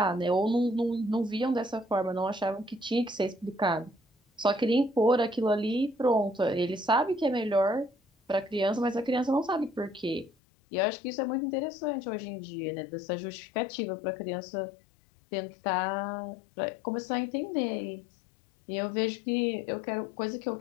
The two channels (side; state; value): right; drops out; at 10.3 s